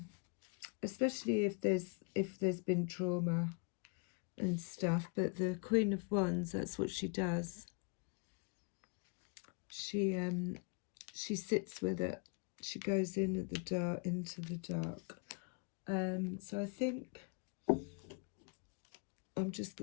especially if there's been trauma and stuff. But the Queen of Wands, that's what she does. She sits with it. She goes in at the dark, into the dark. So I think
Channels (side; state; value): right; quieter; 34.6 dB